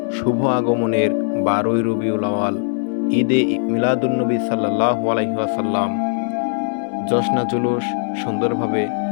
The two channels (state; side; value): silent; right; digital silence